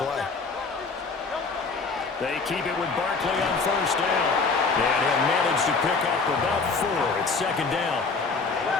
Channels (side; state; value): right; quieter; 4.4 dB